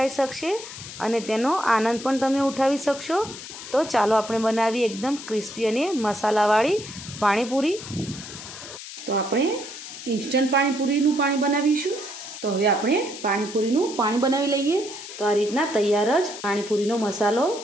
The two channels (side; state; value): left; noise; hiss, 12 dB below the sound